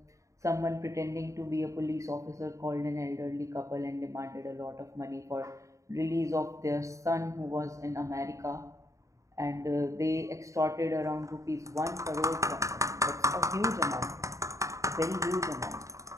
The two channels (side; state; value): left; late; 0.15 ms